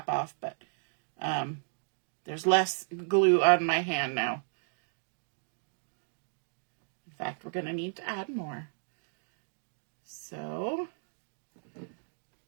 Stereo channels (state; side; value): silent; left; digital silence